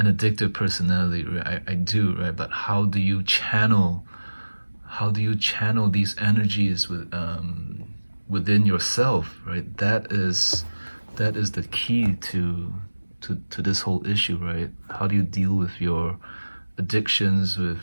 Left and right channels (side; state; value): both; inverted; correlation -1.00